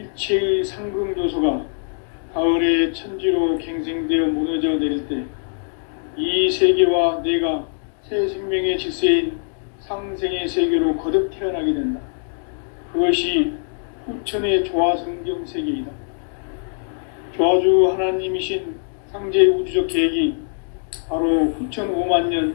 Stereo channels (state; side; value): silent; right; digital silence